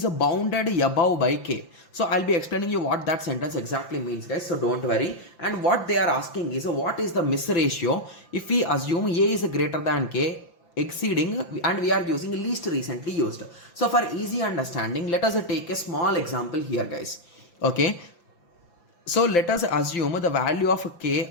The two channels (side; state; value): right; late; 5.9 ms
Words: bounded above by k. So I'll be explaining you what that sentence exactly means, guys, so don't worry. And what they are asking is what is the miss ratio if we assume a is greater than k exceeding, and we are using least recently used. So for easy understanding, let us take a small example here, guys. Okay, so let us assume the value of k